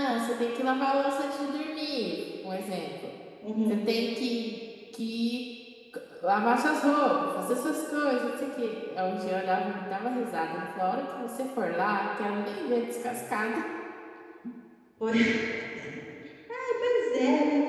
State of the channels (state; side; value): identical; both; correlation 1.00